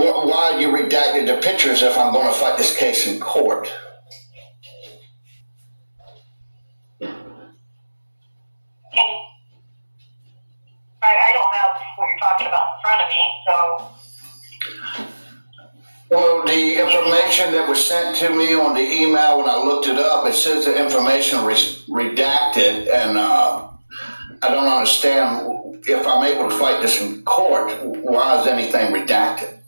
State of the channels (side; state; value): both; inverted; correlation -1.00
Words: you redacted the pictures if I'm going to fight this case in court. I don't know what you're talking about in front of me, so. Well, the information that was sent to me on the email, when I looked it up, it says the information redacted, and I don't understand if I'm able to fight this in court, why is anything redacted?